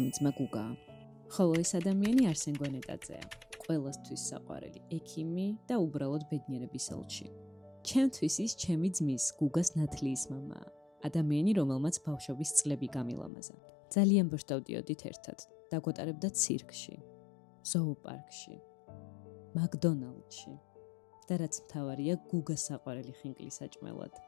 ძმა გუგაა. ხოლო ეს ადამიანი არსენ გვენეტაძეა. ყველასთვის საყვარელი ექიმი და უბრალოდ ბედნიერების ელჩი. ჩემთვის ის ჩემი ძმის გუგას ნათლიის მამაა. ადამიანი, რომელმაც ბავშვობის წლები გამილამაზა. ძალიან ბოშტავდიოდით ერთად. დაგვატარებდა ცირკში, ზოოპარკში, მაკდონალდში. და რაც მთავარია, გუგას საყვარელი ხინკლის საჭმელად.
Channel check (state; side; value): drops out; right; at 13.3 s